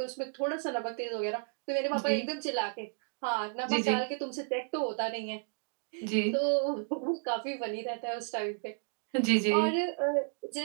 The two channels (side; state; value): left; silent; 56 dB below the other